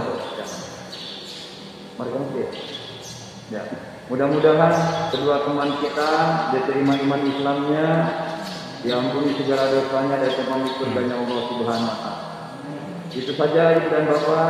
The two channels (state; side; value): identical; both; correlation 1.00